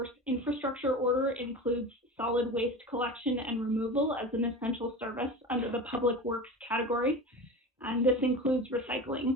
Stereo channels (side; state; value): both; normal; correlation 0.31